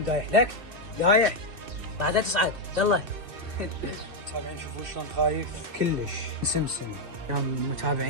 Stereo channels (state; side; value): late; left; 2.6 ms